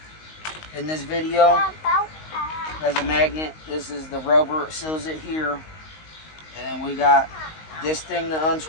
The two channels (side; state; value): right; late; 19 ms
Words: in this video. There's a magnet. This is the rubber that seals it here. And then we got this thing to